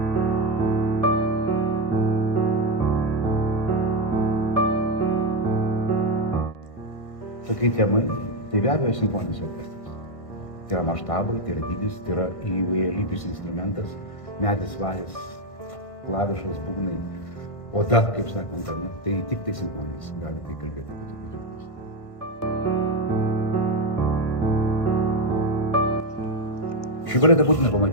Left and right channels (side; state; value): right; late; 1.5 ms